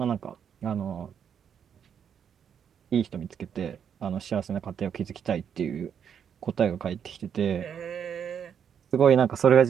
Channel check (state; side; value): quieter; left; 8.0 dB